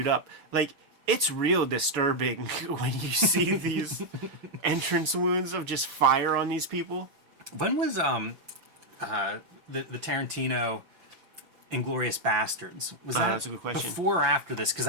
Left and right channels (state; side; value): late; left; 5.9 ms